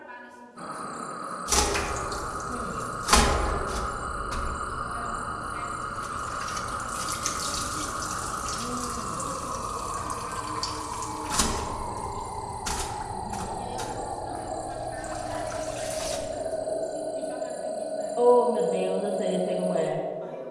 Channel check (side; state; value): both; identical; correlation 1.00